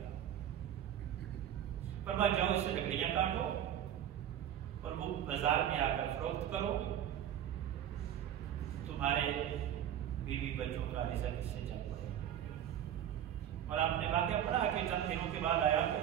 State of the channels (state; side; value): quieter; left; 10.4 dB